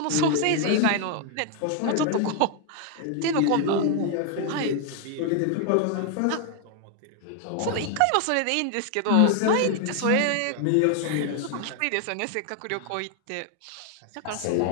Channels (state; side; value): different; both; correlation 0.00